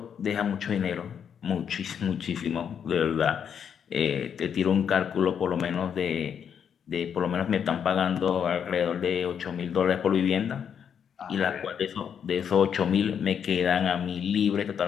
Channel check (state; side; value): quieter; right; 7.9 dB